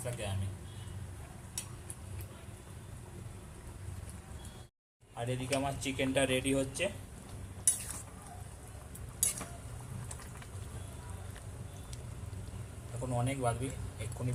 আমি। আর এদিকে আমার চিকেনটা রেডি হচ্ছে। এখন অনেক বাদবি, এক্ষুনি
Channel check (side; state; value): both; identical; correlation 1.00